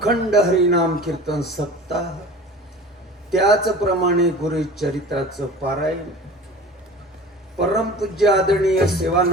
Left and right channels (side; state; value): both; normal; correlation 0.39